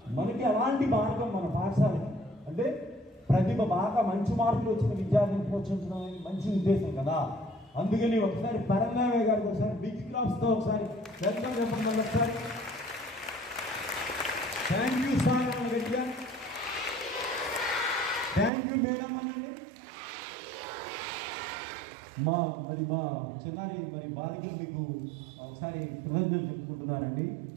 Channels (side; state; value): left; drops out; at 18.5 s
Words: మనకి అలాంటి మార్గం మన పాఠశాలకి అంటే ప్రతిభ బాగా మంచి మార్కులు వచ్చిన విద్యార్థిని ప్రోత్సహించడం అనేది మంచి ఉద్దేశం కదా. అందుకని ఒకసారి పరంధామయ్య గారికి ఒకసారి బిగ్ క్లాప్స్తో ఒకసారి వెల్కమ్ చెప్పండి. ఒకసారి థ్యాంక్ యూ సార్ అని గట్టిగా థ్యాంక్ యూ మేడం అనండి. మా చిన్నారి బాలికలు మీకు ఒకసారి కృతజ్ఞతలు చెప్పుకుంటున్నానండి.